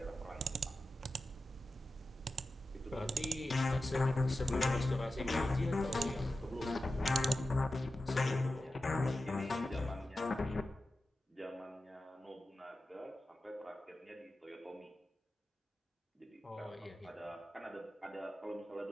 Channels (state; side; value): normal; both; correlation 0.92